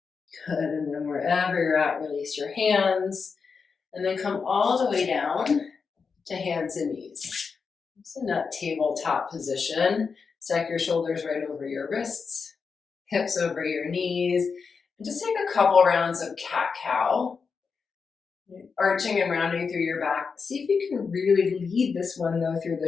Good, and then wherever you're at, release your hands, and then come all the way down to hands and knees. It's in that tabletop position. Stack your shoulders right over your wrists, hips over your knees, and just take a couple rounds of cat-cow. Arching and rounding through your back. See if you can really lead this one though through the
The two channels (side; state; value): right; quieter; 5.3 dB